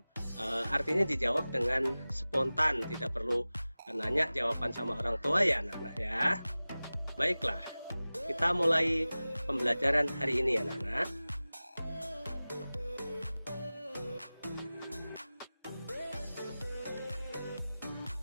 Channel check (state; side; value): inverted; both; correlation -0.97